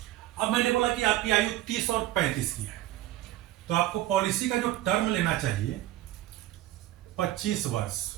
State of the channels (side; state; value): left; quieter; 14.9 dB